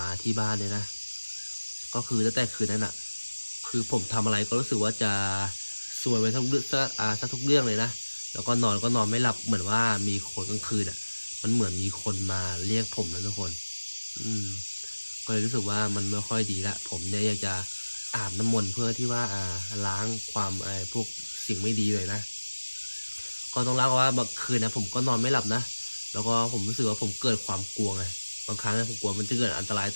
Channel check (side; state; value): both; inverted; correlation -1.00